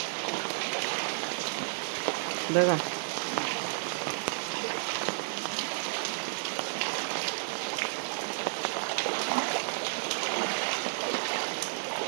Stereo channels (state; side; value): silent; left; 57 dB below the other